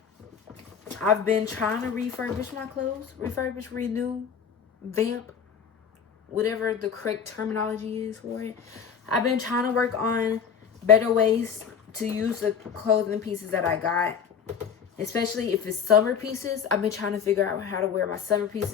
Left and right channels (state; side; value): quieter; right; 7.0 dB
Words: I've been trying to refurbish my clothes. Refurbish, renew, vamp, whatever the correct terminology is for it. I've been trying to work on better ways to use the clothing pieces that I got. Especially if it's summer pieces. I've been trying to figure out how to wear my summer